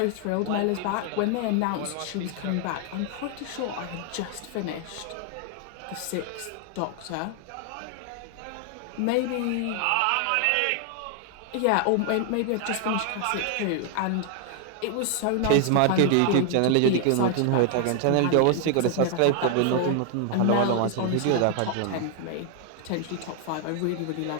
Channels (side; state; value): both; different; correlation 0.00